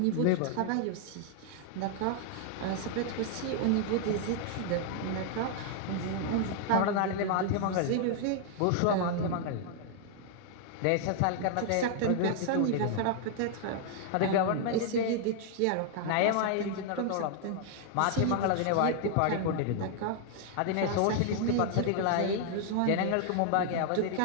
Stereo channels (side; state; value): both; different; correlation 0.00